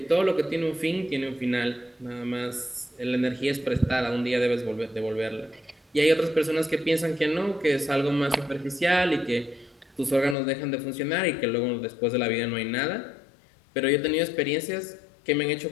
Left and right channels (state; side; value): drops out; right; at 10.4 s